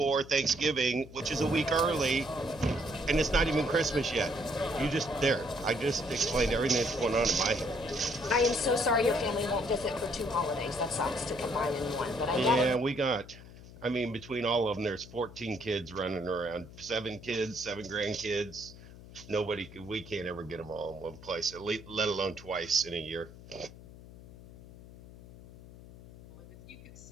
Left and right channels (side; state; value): left; noise; hum, 18 dB below the sound